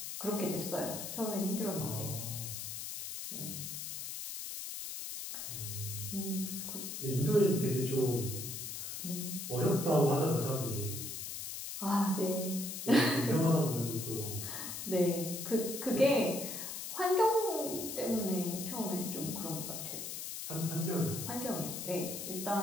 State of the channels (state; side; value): noise; left; hiss, 6 dB below the sound